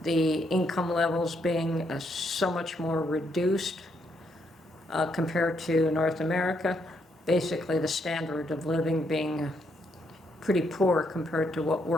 the income levels being so much more reduced compared to North America, basically the standard of living being pretty poor compared to what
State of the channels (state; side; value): normal; both; correlation 0.75